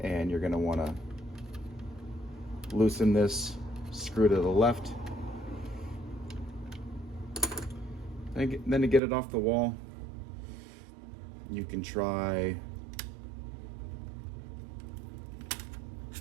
and you're going to want to loosen this screw to the left. And then to get it off the wall, you can try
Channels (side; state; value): left; drops out; at 9.0 s